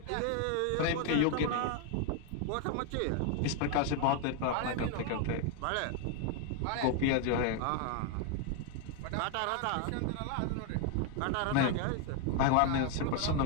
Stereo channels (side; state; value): both; different; correlation 0.01